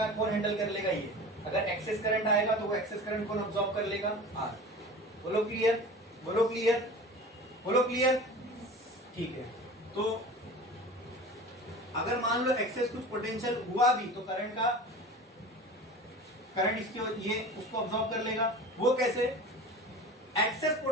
कौन हैंडल कर लेगा? ये। अगर एक्सेस करंट आएगा तो वो एक्सेस करंट कौन अब्सॉर्ब कर लेगा? R। बोलो क्लियर? बोलो क्लियर? बोलो क्लियर? ठीक है। तो अगर मान लो एक्सेस कुछ पोटेंशियल हुआ भी तो करंट इसके ये उसको अब्सॉर्ब कर लेगा। वो कैसे? एक्सेस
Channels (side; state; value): both; normal; correlation 0.36